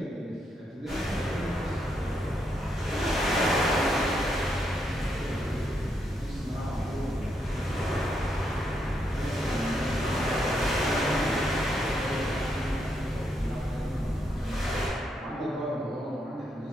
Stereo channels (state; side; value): normal; both; correlation 0.78